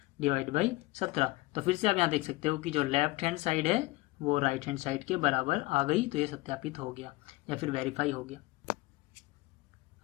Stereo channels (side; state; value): right; quieter; 21.1 dB